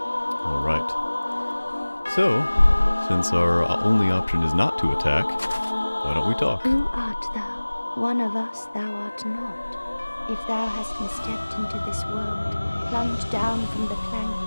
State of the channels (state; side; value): inverted; both; correlation -1.00